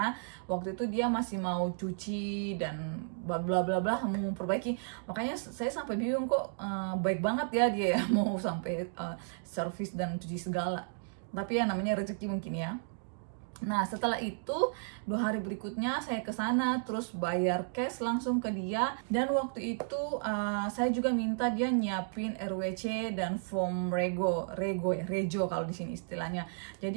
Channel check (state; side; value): silent; left; digital silence